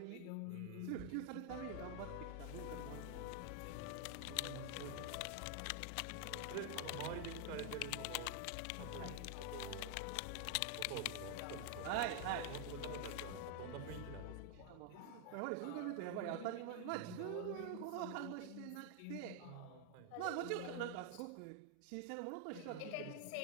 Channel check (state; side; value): different; both; correlation 0.00